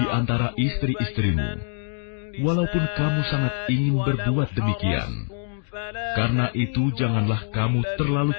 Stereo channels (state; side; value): silent; right; digital silence